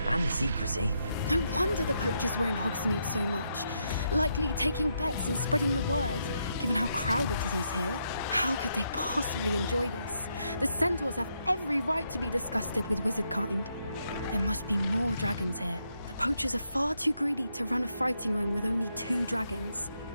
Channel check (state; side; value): inverted; both; correlation -0.79